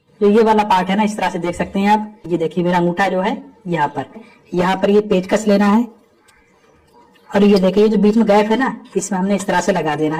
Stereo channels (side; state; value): both; identical; correlation 1.00